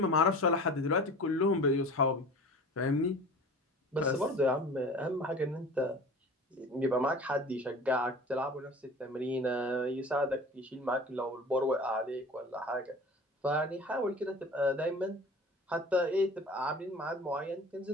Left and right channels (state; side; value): normal; both; correlation 0.40